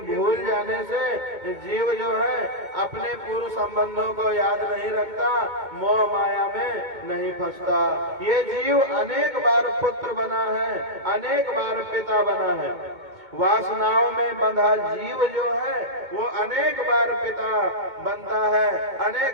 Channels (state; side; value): late; left; 2.2 ms